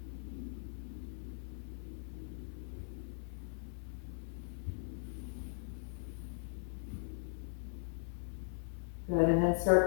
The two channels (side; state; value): right; silent; 51 dB below the other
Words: Good, and then